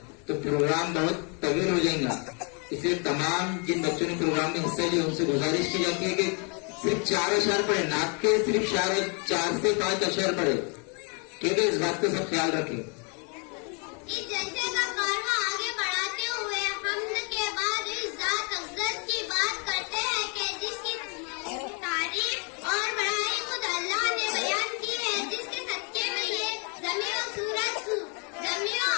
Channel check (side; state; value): right; quieter; 36.0 dB